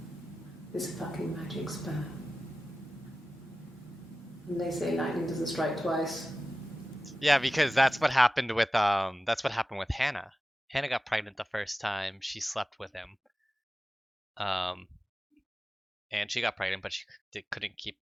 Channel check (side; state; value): both; normal; correlation 0.94